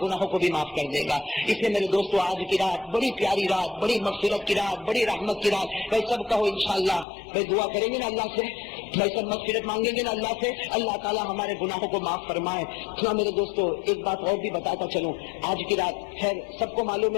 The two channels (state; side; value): drops out; right; at 7.1 s